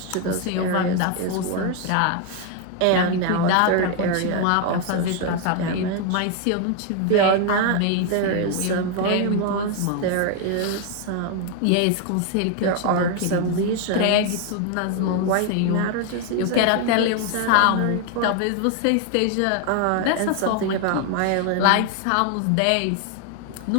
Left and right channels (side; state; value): both; different; correlation 0.01